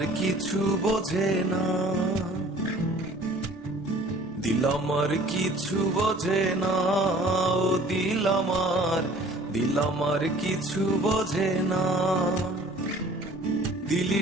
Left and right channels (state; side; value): normal; both; correlation 0.51